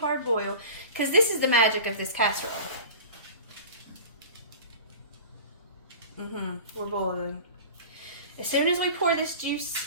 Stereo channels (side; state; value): both; inverted; correlation -0.37